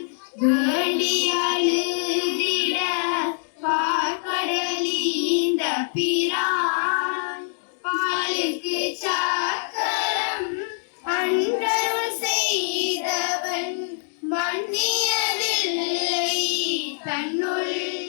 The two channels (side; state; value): right; silent; digital silence